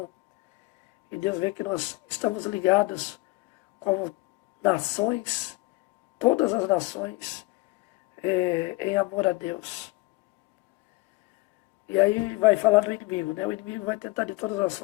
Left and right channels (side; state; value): right; quieter; 22.7 dB